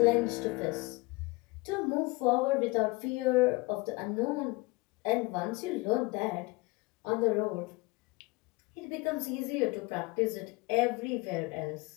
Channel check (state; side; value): quieter; right; 24.9 dB